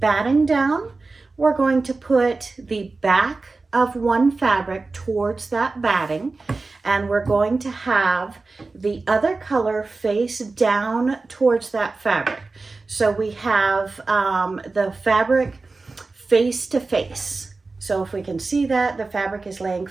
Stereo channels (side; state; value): left; quieter; 3.7 dB